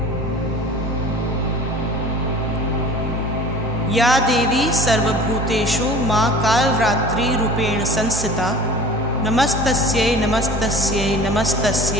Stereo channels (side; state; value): both; normal; correlation 0.42